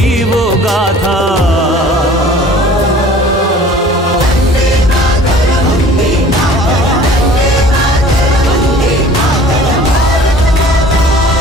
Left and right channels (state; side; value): normal; both; correlation 0.48